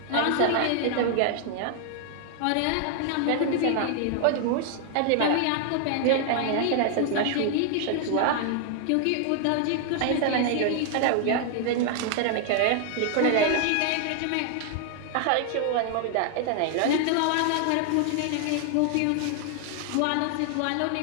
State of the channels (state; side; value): different; both; correlation 0.00